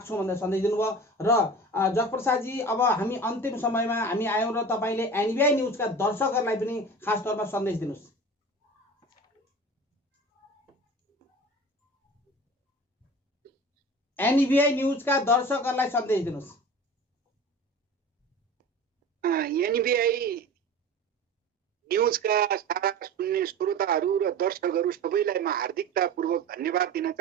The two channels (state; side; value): normal; both; correlation 0.36